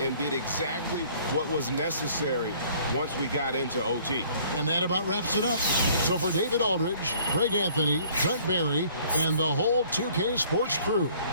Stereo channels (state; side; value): inverted; both; correlation -0.56